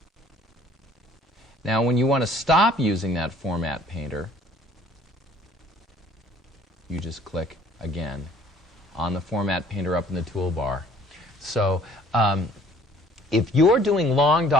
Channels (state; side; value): normal; both; correlation 0.56